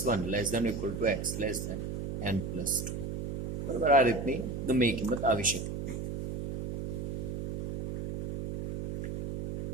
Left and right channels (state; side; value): noise; right; hum, 5 dB below the sound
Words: 1 less than equal to x less than n plus 2. બરાબર, આ રીતની ગમે એ કિંમત આવી શકે.